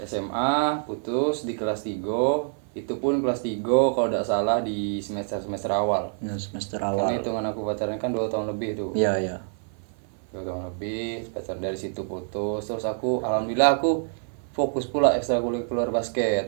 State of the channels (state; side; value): silent; left; 58 dB below the other